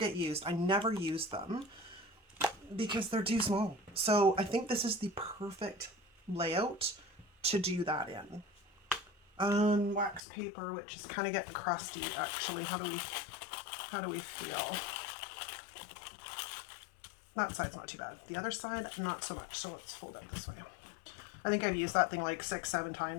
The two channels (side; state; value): right; drops out; at 10.2 s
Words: used. I never use them because they're too small. So I think this is the perfect layout to do that in. Wax paper, which is kind of getting crusty actually. How do we feel? That side's not too bad. The other side, not so much. So let's fold it this way. I think I've used that thing like 6-7